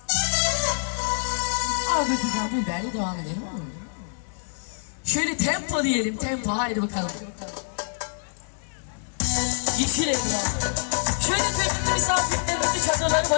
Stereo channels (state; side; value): silent; right; digital silence